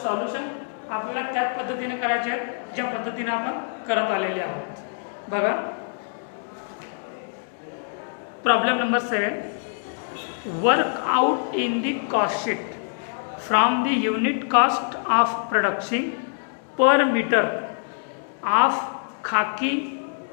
सॉल्युशन आपल्याला त्याच पद्धतीने करायचे आहे ज्या पद्धतीने आपण करत आलेले आहोत। बघा, problem number 7, work out in the cost sheet from the unit cost of production per metre of khaki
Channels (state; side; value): silent; right; digital silence